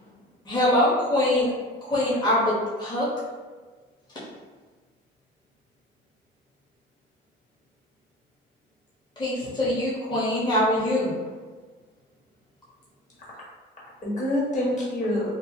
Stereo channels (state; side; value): normal; both; correlation 0.37